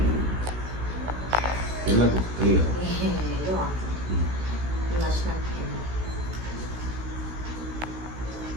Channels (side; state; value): left; late; 16 ms